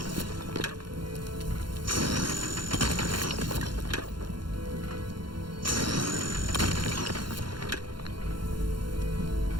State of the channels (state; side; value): late; left; 0.72 ms